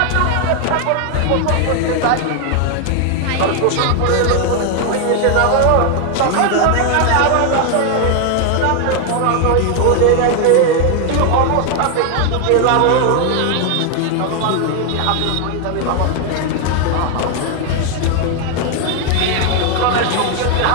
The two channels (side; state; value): both; different; correlation 0.01